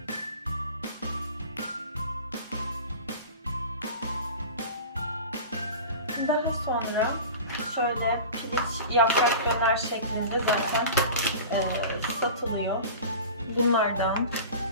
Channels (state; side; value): inverted; both; correlation -0.35